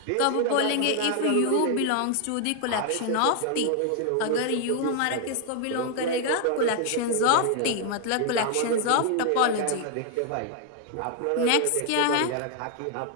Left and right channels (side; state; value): both; different; correlation 0.00